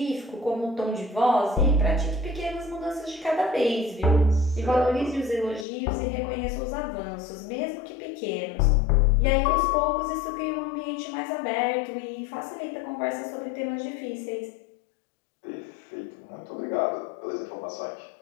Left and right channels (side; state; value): right; drops out; at 5.7 s